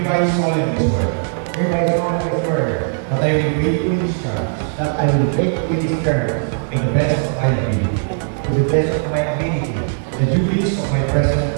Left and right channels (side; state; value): left; silent; 56 dB below the other